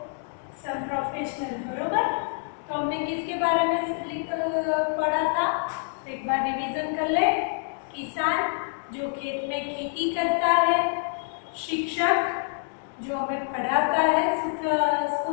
प्रोफेशनल, बरोबर? तो हमने किसके बारे में पढ़ा था? एक बार रिवीजन कर ले। किसान जो खेत में खेती करता है, शिक्षक जो हमें पढ़ाता है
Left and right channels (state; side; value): silent; right; digital silence